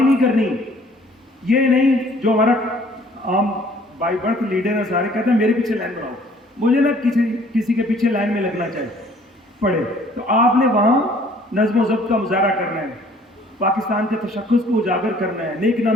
کرنی. یہ نہیں جو ہمارا عام بائی برتھ لیڈر ہے سارے کہتے ہیں میرے پیچھے لائن بناؤ, مجھے نہ کسی کے پیچھے لائن میں لگنا چاہیے پڑے. تو آپ نے وہاں نظم و ضبط کا مظاہرہ کرنا ہے, پاکستان کے تشخص کو اجاگر کرنا ہے, نیک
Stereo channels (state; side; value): normal; both; correlation 0.57